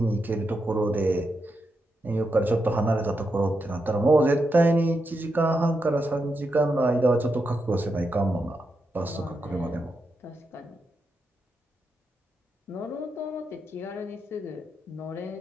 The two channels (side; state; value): both; normal; correlation 0.85